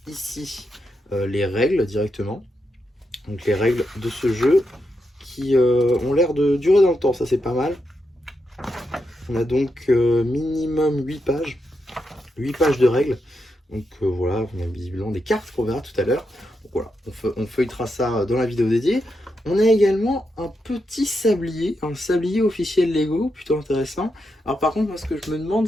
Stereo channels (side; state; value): both; normal; correlation 0.84